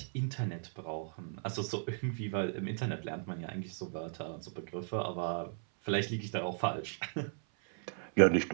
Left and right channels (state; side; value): silent; left; 54 dB below the other